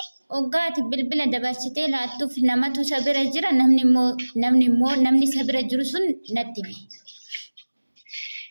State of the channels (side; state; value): both; inverted; correlation -1.00